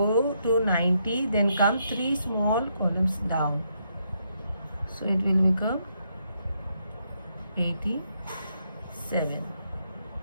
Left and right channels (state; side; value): inverted; both; correlation -0.77